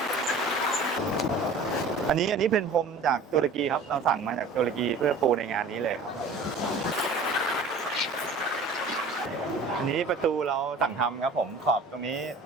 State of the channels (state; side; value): quieter; left; 3.4 dB